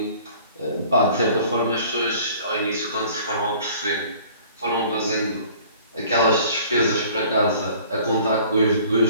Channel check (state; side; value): inverted; both; correlation -0.51